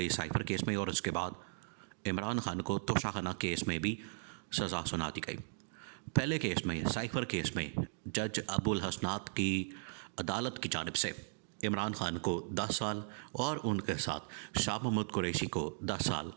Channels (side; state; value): left; silent; digital silence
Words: साइफर केस में और उसके बाद इमरान खान को तोशाखाना केस में भी सज़ा सुना दी गई। पहले केस में, साइफर केस में, जज अबुल हसनात की अदालत की जानिब से इमरान खान को 10 साल और उनके साथ शाह महमूद कुरैशी को 10 साल